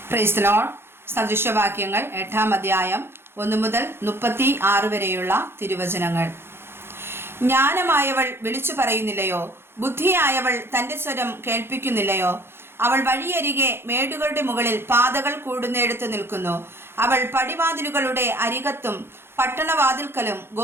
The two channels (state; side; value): late; left; 0.11 ms